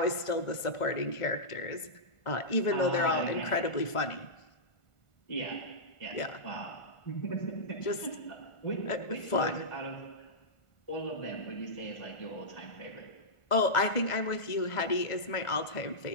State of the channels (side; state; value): right; late; 1.4 ms